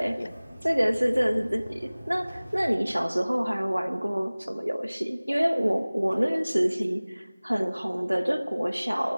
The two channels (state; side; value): inverted; both; correlation -0.99